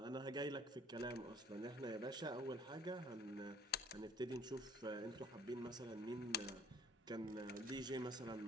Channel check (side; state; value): both; normal; correlation 0.56